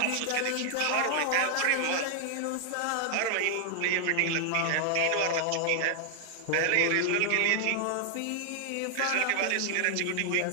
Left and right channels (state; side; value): different; both; correlation 0.00